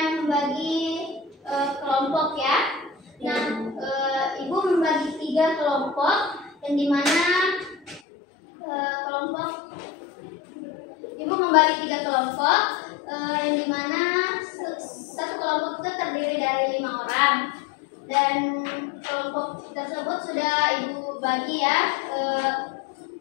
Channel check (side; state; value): right; drops out; at 8.0 s